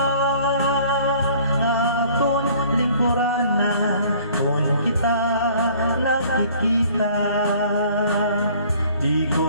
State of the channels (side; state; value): both; inverted; correlation -0.54